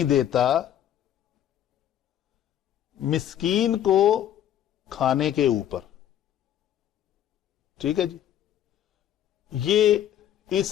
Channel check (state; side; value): quieter; right; 10.9 dB